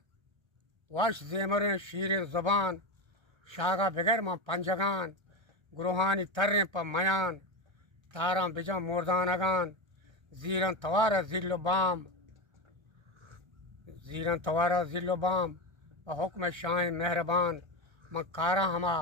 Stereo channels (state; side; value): late; left; 1.3 ms